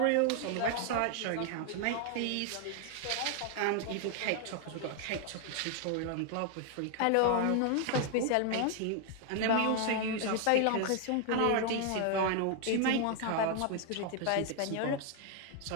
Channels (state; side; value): different; both; correlation 0.00